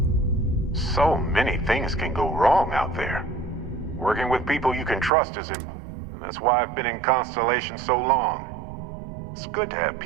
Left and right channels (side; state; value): left; drops out; at 5.1 s